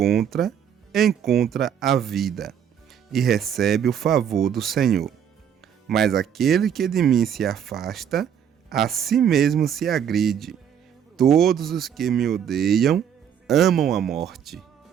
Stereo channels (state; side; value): quieter; left; 8.6 dB